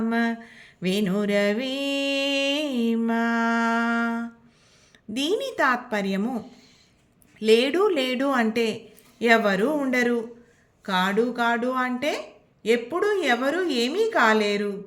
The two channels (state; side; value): identical; both; correlation 1.00